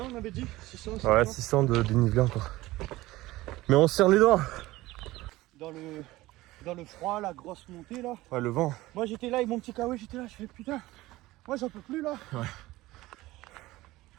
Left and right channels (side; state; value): left; quieter; 18.2 dB